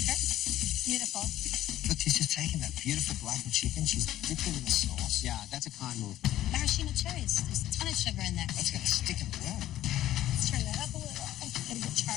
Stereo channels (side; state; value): right; quieter; 13.4 dB